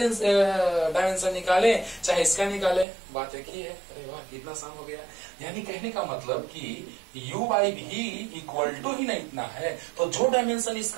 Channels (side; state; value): left; drops out; at 2.9 s